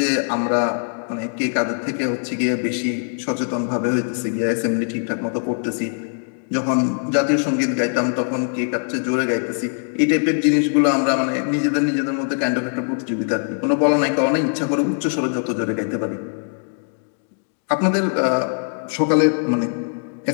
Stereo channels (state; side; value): silent; right; digital silence